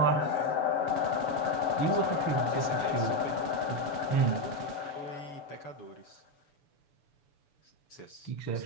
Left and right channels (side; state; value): right; late; 7.0 ms